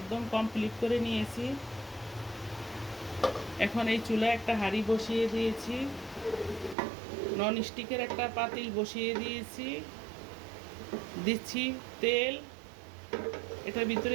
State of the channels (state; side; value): drops out; left; at 6.8 s